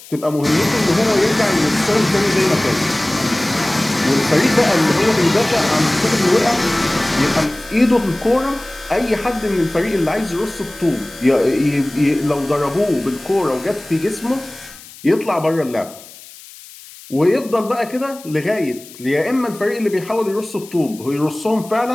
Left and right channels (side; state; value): left; noise; hiss, 19 dB below the sound